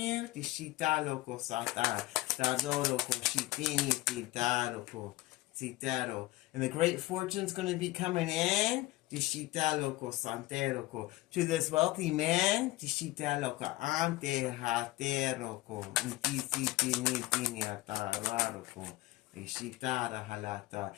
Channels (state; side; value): quieter; right; 18.8 dB